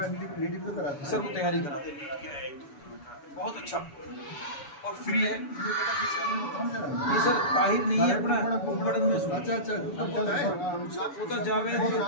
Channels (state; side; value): late; right; 7.0 ms